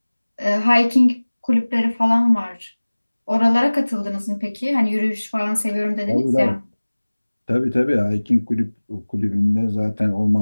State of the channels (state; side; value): inverted; both; correlation -1.00